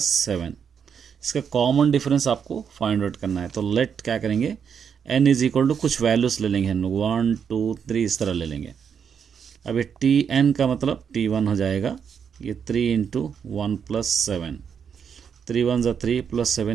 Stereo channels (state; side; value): quieter; left; 7.2 dB